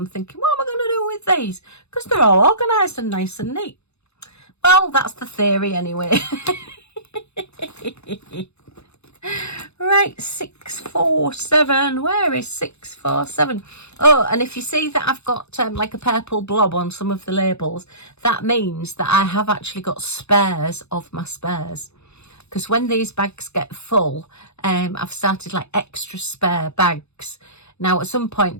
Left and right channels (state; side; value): late; right; 0.80 ms